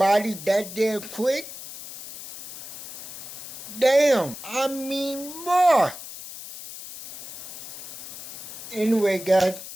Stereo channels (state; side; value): noise; left; hiss, 12 dB below the sound